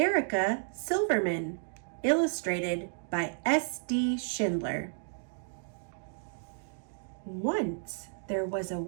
Silverman, illustrated by S.D. Schindler. Once there was a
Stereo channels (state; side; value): silent; left; 56 dB below the other